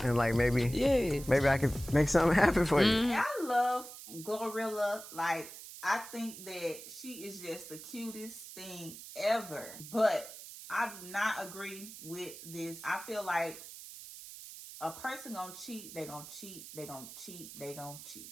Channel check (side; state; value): right; noise; hiss, 13 dB below the sound